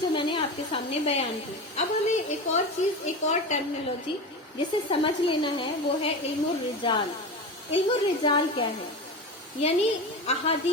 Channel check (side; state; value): both; normal; correlation 0.25